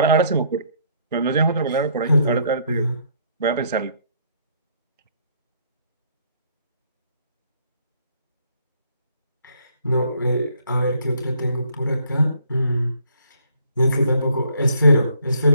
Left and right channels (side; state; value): both; inverted; correlation -0.66